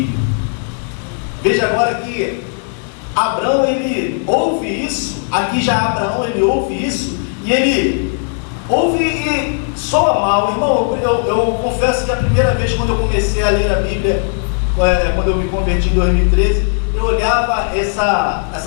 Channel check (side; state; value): right; silent; 61 dB below the other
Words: Veja agora que Abraão, ele ouve isso. Aqui já Abraão, ele ouve isso, e ele ouve e soa mal. Irmão, eu confesso que a primeira vez quando eu comecei a ler a Bíblia, quando eu me converti em 2013, eu olhava